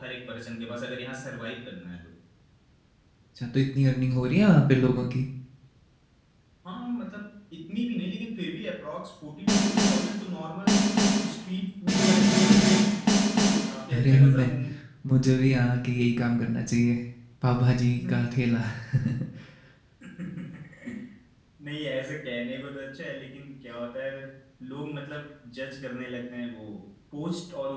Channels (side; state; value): both; identical; correlation 1.00